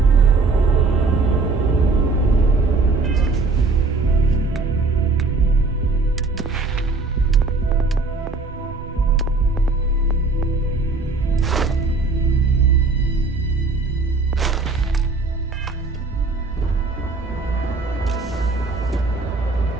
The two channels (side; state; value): left; quieter; 3.7 dB